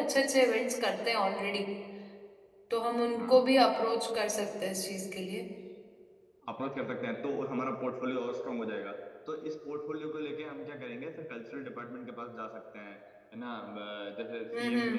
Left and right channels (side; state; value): both; identical; correlation 1.00